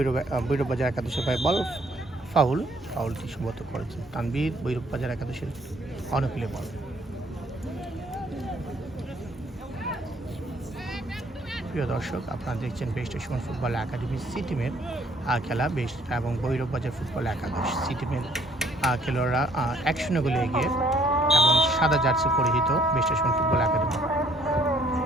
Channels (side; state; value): both; normal; correlation 0.62